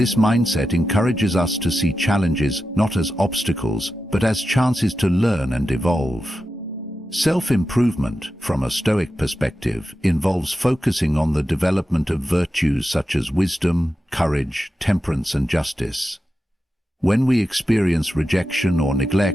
mindset encourages us to see challenges not as obstacles, but as chances to learn and evolve. Self-improvement, from a Stoic perspective, involves focusing on the development of virtues such as wisdom, courage, temperance, and justice. When we experience rejection or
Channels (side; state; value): both; normal; correlation 0.91